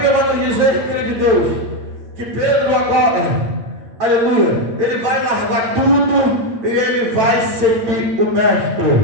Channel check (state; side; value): late; left; 9.0 ms